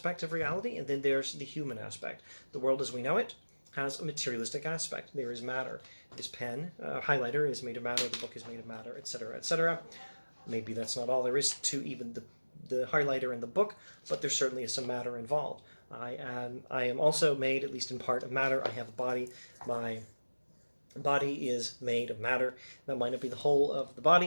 of reality, and then there's the human aspect. The world as we know it has a materialistic aspect. There is matter. This pen, highlighter is made of matter, the book is made of matter, etc., etc. Maybe that's not all there is to even the highlighter and the book, but there certainly is some matter involved. I am also made, at least in part, of matter. I have a body. My body is made of matter. That might not be the whole of the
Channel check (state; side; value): inverted; both; correlation -1.00